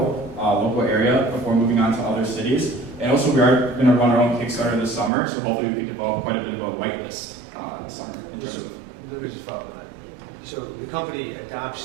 local area before moving on to other cities. And also we are gonna run our own Kickstarter this summer. So hopefully we can develop quite a bit of a whitelist this summer. In terms of Let me just follow that. So the company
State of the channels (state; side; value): drops out; left; at 5.1 s